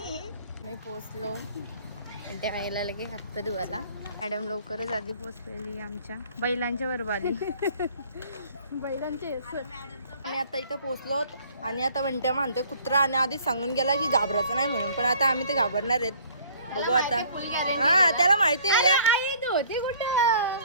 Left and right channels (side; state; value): both; inverted; correlation -0.55